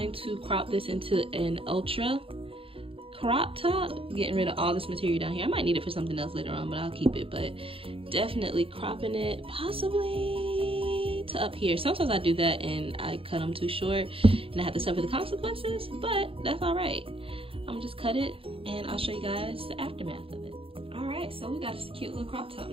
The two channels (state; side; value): late; left; 0.27 ms